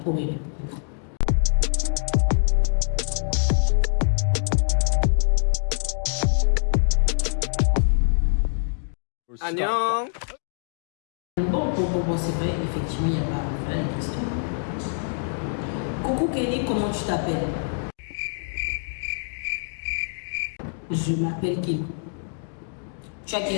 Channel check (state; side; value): silent; right; digital silence